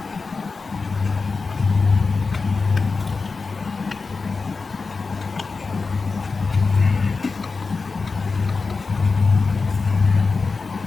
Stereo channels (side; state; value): right; quieter; 4.3 dB